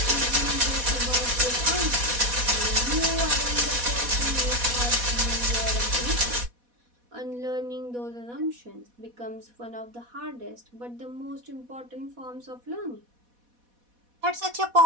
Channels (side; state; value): left; late; 4.1 ms